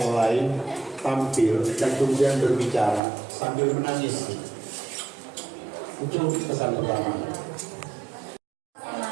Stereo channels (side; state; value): left; drops out; at 3.0 s